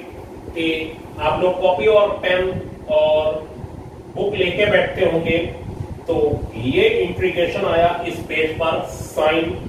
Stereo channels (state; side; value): identical; both; correlation 1.00